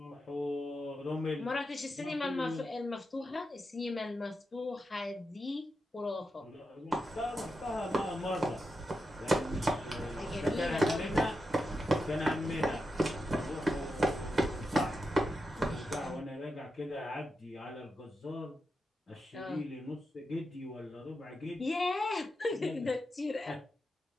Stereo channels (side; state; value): both; normal; correlation 0.87